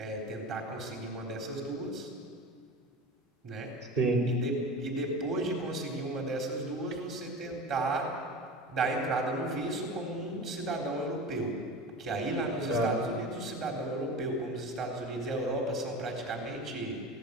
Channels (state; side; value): normal; both; correlation 0.31